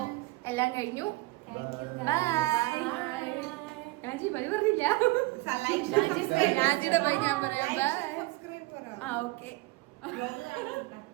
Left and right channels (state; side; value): quieter; left; 21.0 dB